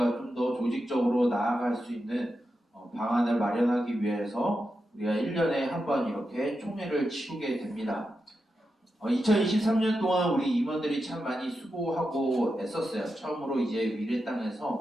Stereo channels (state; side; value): normal; both; correlation 0.88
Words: 좀 더 조직적으로 나아갈 수 있는 방안을 마련하기 위해서 우리가 1년에 한 번 이렇게 총회를 치르게 됩니다. 2023년 동안 우리 임원들이 참 많이 수고하고 애썼어요. 처음으로 이제 미래